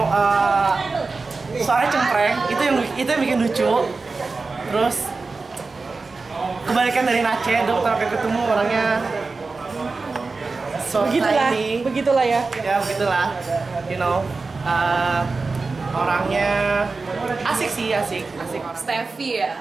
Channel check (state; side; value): quieter; left; 4.0 dB